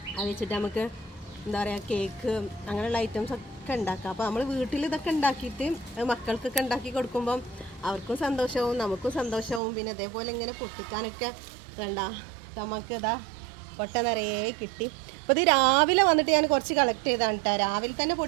അത് വെച്ചിട്ട് നമുക്ക് എന്താ പറയുക കേക്ക് അങ്ങനെയുള്ള ഐറ്റംസ് ഒക്കെ ഉണ്ടാക്കാം. അപ്പോൾ നമ്മൾ വീട്ടിൽ ഇതൊക്കെ ഉണ്ടാക്കിയിട്ട് മക്കൾക്കൊക്കെ ഉണ്ടാക്കി കൊടുക്കുമ്പം അവർക്കും സന്തോഷവും നമുക്കും സന്തോഷവും. പിന്നെ അതേപോലെ ഇങ്ങനെ പൊട്ടിക്കാനൊക്കെ വേണ്ട നമുക്ക് ഇതാ കൊട്ട നിറയെ കിട്ടി. അപ്പോൾ ഇത് രാവിലെ വന്നിട്ട് ഞാൻ കുറച്ച് കളക്ട് ചെയ്താണ് കേട്ടോ. രാവിലെ തന്നെ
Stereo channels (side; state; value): left; drops out; at 9.6 s